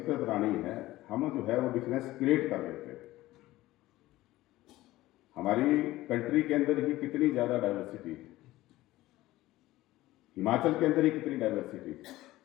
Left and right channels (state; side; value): quieter; right; 17.0 dB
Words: प्राणी है, हम जो है वो डिफरेंस क्रिएट कर लेते हैं। हमारी कंट्री के अंदर ही कितनी ज़्यादा डाइवर्सिटी है, हिमाचल के अंदर ही कितनी डाइवर्सिटी है।